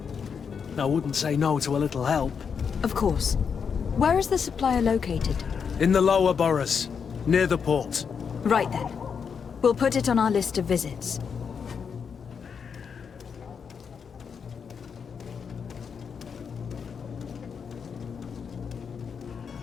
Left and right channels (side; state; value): right; quieter; 6.5 dB